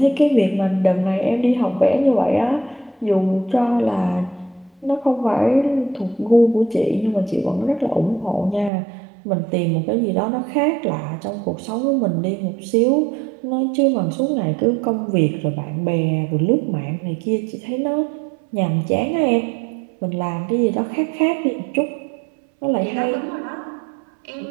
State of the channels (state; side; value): drops out; left; at 8.7 s